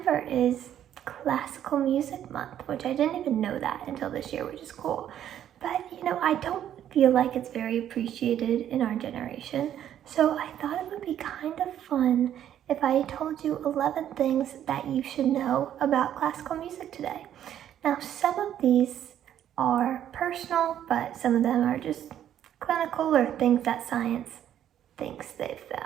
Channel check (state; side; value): quieter; left; 10.7 dB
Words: is Classical Music Month, which I didn't even know that until this year, which is cool. But I don't feel like it's very appreciated in our generation. So I thought it would be kind of fun if I told you 11 things that you should know about classical music today. Now, some of these are personal, but some of them are just clinical or things that science thinks they've